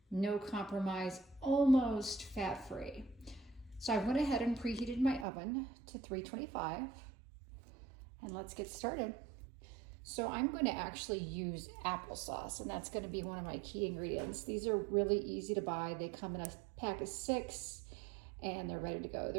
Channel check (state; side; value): drops out; left; at 5.2 s